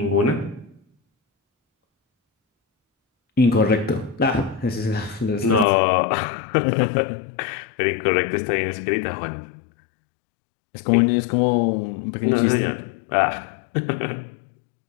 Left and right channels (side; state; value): right; drops out; at 5.7 s